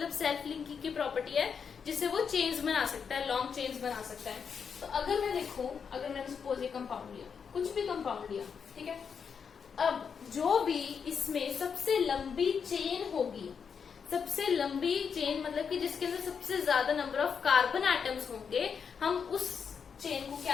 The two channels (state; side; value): quieter; right; 6.5 dB